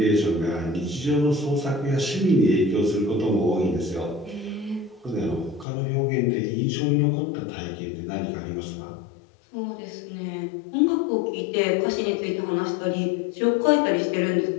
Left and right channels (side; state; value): right; drops out; at 5.7 s